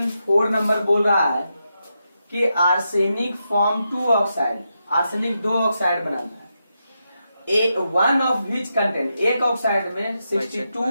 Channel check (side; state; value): both; inverted; correlation -0.85